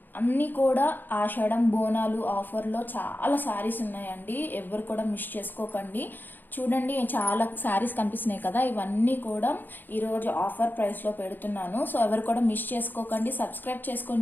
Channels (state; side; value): late; right; 0.090 ms